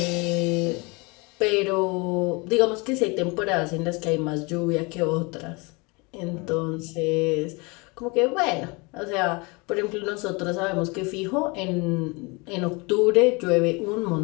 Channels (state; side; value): quieter; right; 27.9 dB